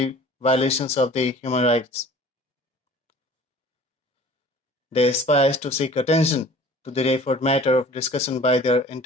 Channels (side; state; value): both; normal; correlation 0.47